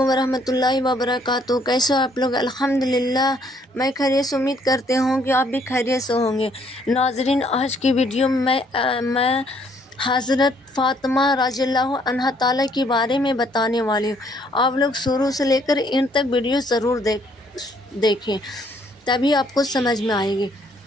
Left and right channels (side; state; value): both; normal; correlation 0.66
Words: ورحمۃ اللہ وبرکاتہ۔ کیسے ہو آپ لوگ؟ الحمدللہ میں خیریت سے امید کرتے ہوں کہ آپ بھی خیریت سے ہوں گے۔ ناظرین، آج کی ویڈیو میں حضرت فاطمہ رضی اللہ عنہا تعالیٰ کے بارے میں بتانے والی ہوں۔ آپ لوگ شروع سے لے کر ان تک ویڈیو ضرور دیکھیں، تبھی آپ کو سمجھ میں آئے گی۔